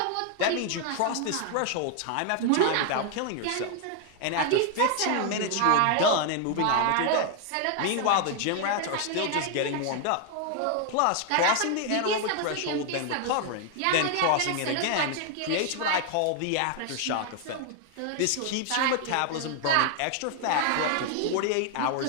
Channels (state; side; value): different; both; correlation 0.00